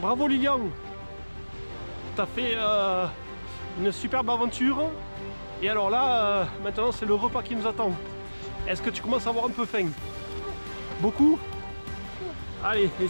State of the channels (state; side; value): inverted; both; correlation -1.00